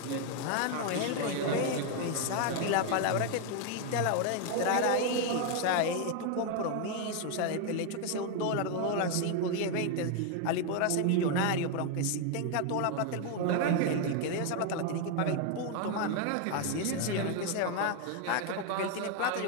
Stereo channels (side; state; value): both; different; correlation 0.01